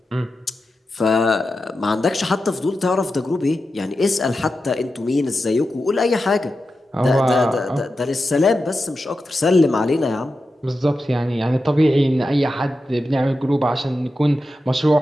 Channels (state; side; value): normal; both; correlation 0.90